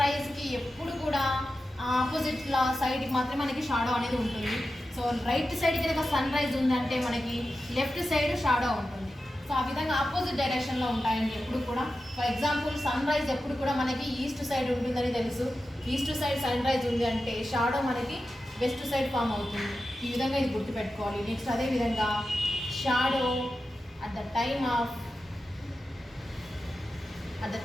రైజ్కి ఎప్పుడు కూడా ఆపోజిట్ సైడ్కి మాత్రమే మనకి షాడో అనేది ఉంటుంది. సో రైట్ సైడ్ కనుక సన్ రైజ్ ఉందంటే మనకి లెఫ్ట్ సైడ్ షాడో ఉంటుంది. సో ఆ విధంగా ఆపోజిట్ డైరెక్షన్లో ఉంటాయండి ఎప్పుడు కూడా. ఫర్ ఎగ్జాంపుల్ సన్ రైజ్ ఎప్పుడు కూడా మనకి ఈస్ట్ సైడ్ ఉంటుందని తెలుసు. ఈస్ట్ సైడ్ సన్ రైజ్ ఉంది అంటే షాడో మనకి వెస్ట్ సైడ్ ఫామ్ అవుతుంది. ఈ విధంగా ఇది గుర్తుపెట్టుకోవాలి. నెక్స్ట్ అదేవిధంగా shadow at the time of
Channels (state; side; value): normal; both; correlation 0.92